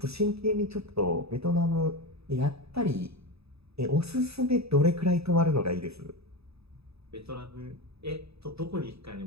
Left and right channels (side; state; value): left; late; 0.78 ms